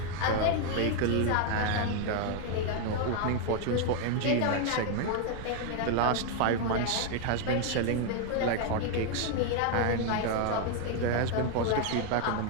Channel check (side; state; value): both; different; correlation 0.01